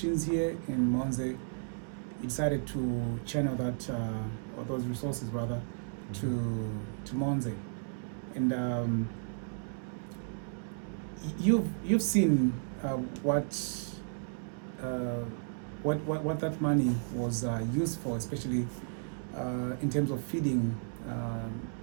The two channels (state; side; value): silent; left; digital silence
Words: here in Monze, you decided to channel that, or those resources rather, to Monze. And you've seen what that money was used for, especially in terms of feeding